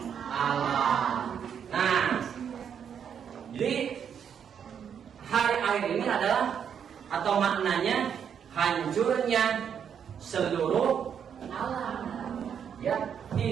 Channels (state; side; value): quieter; left; 8.0 dB